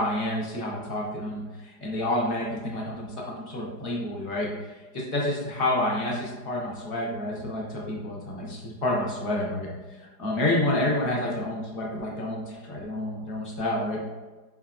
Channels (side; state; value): left; late; 4.9 ms